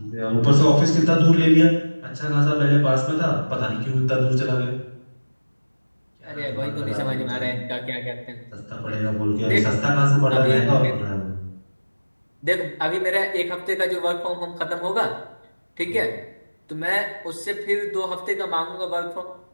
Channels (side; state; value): both; inverted; correlation -1.00